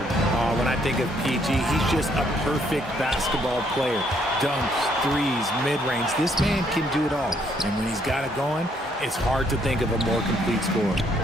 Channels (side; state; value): both; normal; correlation 0.69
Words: When I think of PG, he's just a perfect basketball player. Dunks, threes, mid-range. This man can do it all. And when he's got it going, it's hard to think of a more complete scorer.